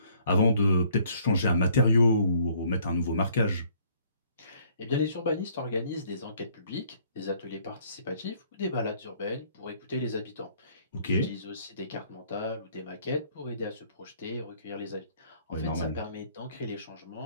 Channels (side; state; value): both; inverted; correlation -0.61